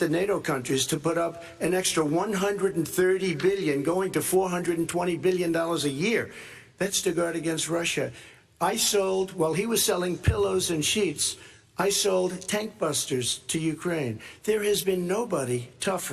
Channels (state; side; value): identical; both; correlation 1.00